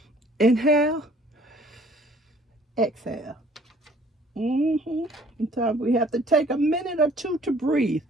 inhale, exhale. Sometimes we have to take a minute or two to breathe.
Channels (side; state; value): both; normal; correlation 0.56